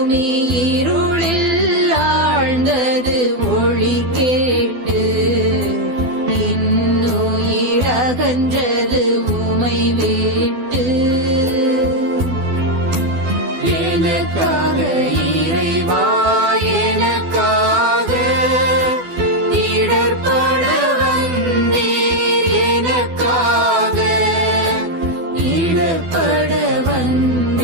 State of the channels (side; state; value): left; late; 12 ms